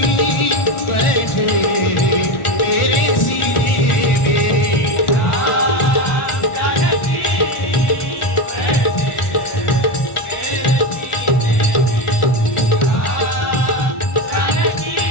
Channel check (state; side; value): late; right; 1.4 ms